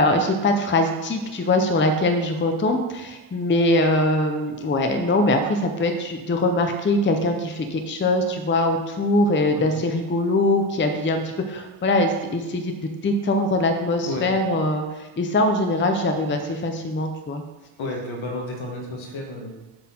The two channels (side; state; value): both; normal; correlation 0.19